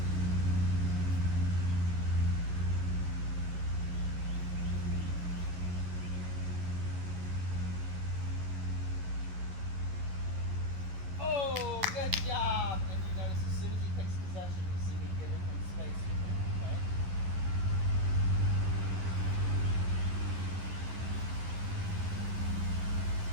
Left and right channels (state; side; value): late; left; 11 ms